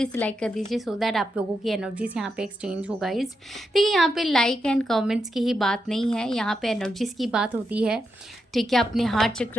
से लाइक कर दीजिए, सो दैट आप लोगों की एनर्जीज यहाँ पे एक्सचेंज हो गाइस। देखिए यहाँ पे लाइक एंड कमेंट्स की ही बात नहीं है, यहाँ पे एनर्जीज की बात होती है, ठीक है। अपने हार्ट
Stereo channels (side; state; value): both; normal; correlation 0.85